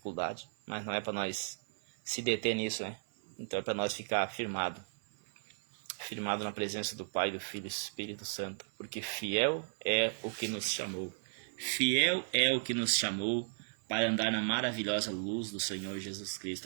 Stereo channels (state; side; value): silent; left; 54 dB below the other